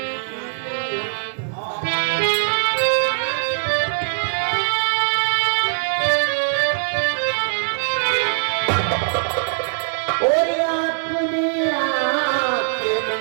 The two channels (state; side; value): silent; left; 58 dB below the other